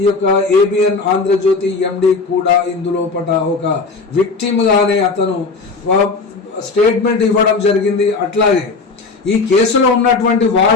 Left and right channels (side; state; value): right; quieter; 4.1 dB